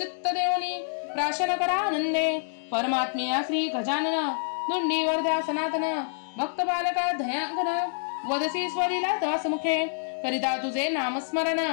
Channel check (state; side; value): silent; right; digital silence